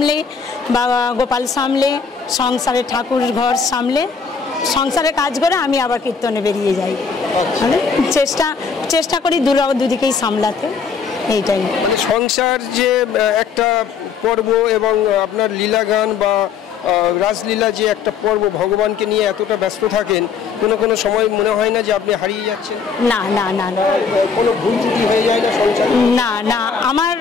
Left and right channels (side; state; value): right; quieter; 5.8 dB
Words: বাবা গোপাল সামলে, সংসারে ঠাকুর ঘর সামলে, সংসারে কাজ করে আমি আবার কীর্তনে বেরিয়ে যাই। মানে চেষ্টা করি দুদিকেই সামলাতে, এইটাই। মানে সংসার যে একটা পর্ব এবং আপনার লীলা গান বা রাসলীলা যে একটা পর্ব, ভগবানকে নিয়ে এতটা ব্যস্ত থাকেন, কোনো সময় মনে হয় না যে আপনি হারিয়ে যাচ্ছেন? না না না না, কোনো ভুল ত্রুটি হয়ে যায় না সংসারে? না না, আমার